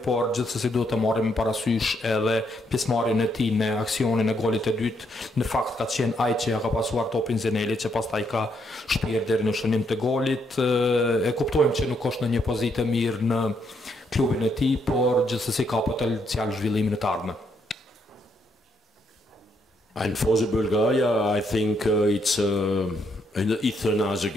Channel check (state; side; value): normal; both; correlation 0.75